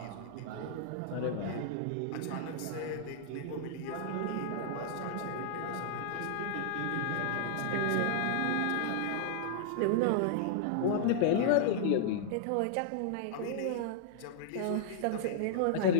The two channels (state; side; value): different; both; correlation -0.01